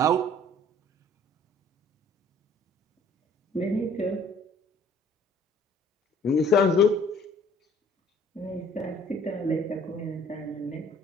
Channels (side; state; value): both; normal; correlation 0.56